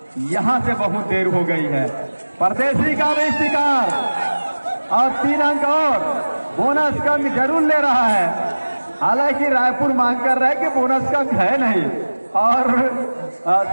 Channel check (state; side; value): inverted; both; correlation -1.00